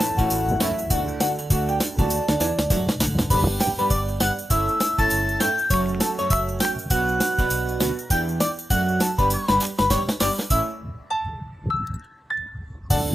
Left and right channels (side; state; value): both; normal; correlation 0.92